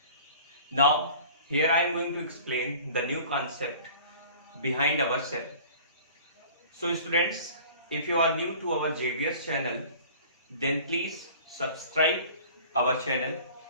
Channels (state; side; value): inverted; both; correlation -0.45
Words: Now here I am going to explain the new concept behind our cell. So students, if you are new to our JVS channel, then please subscribe our channel